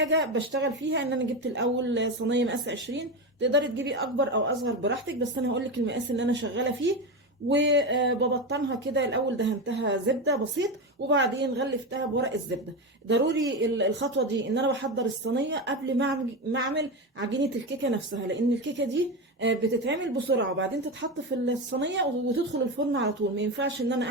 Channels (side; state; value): both; normal; correlation 0.17